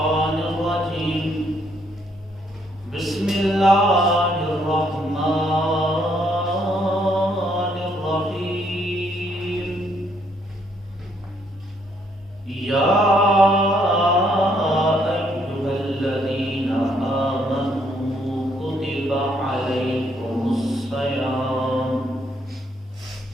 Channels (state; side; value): normal; both; correlation 0.70